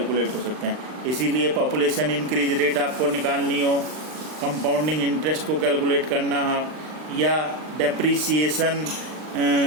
हो सकते हैं। इसीलिए पॉपुलेशन इंक्रीज रेट आपको निकालनी हो, कंपाउंडिंग इंटरेस्ट को कैलकुलेट करना हो, या डेप्रीसिएशन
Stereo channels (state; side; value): late; left; 39 ms